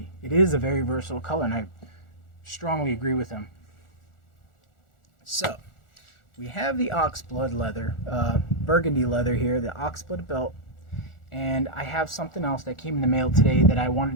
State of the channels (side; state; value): right; late; 1.4 ms